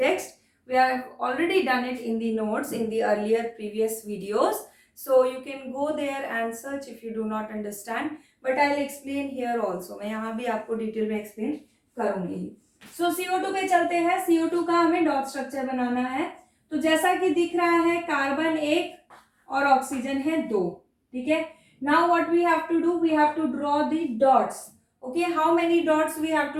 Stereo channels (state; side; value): identical; both; correlation 1.00